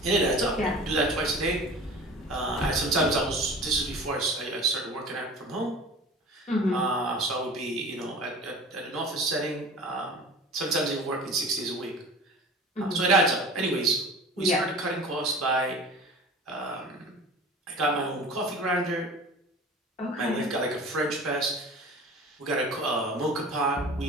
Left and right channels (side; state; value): both; normal; correlation 0.40